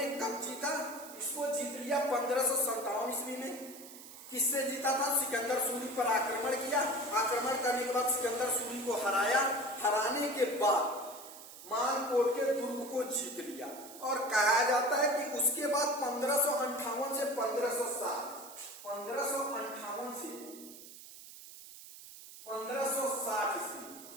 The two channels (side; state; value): right; noise; hiss, 16 dB below the sound